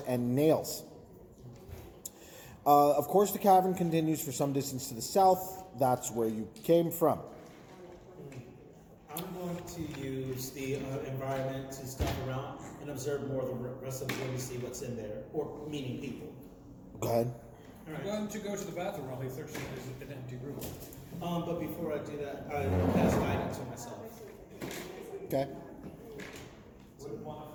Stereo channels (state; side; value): identical; both; correlation 1.00